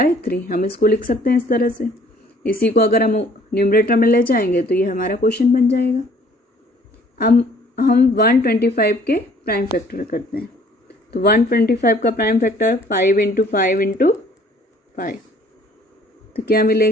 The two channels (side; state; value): both; normal; correlation 0.58